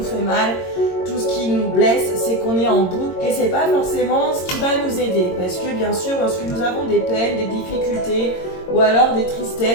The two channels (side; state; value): right; late; 22 ms